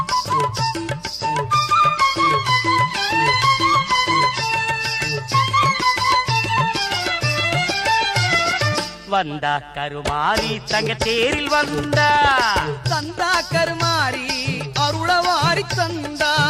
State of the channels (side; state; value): both; identical; correlation 1.00